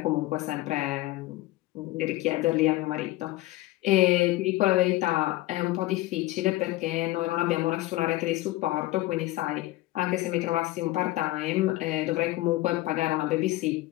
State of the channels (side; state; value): right; quieter; 17.9 dB